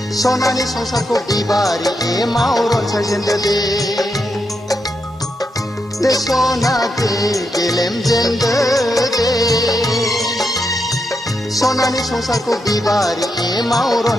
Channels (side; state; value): both; normal; correlation 0.84